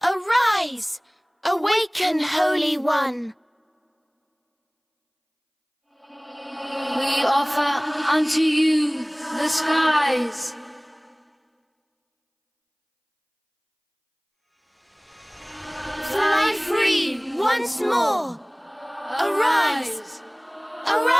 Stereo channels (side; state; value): both; identical; correlation 1.00